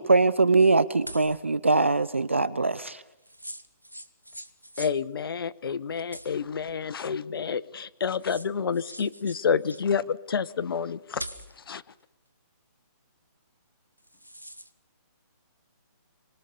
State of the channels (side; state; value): both; inverted; correlation -0.65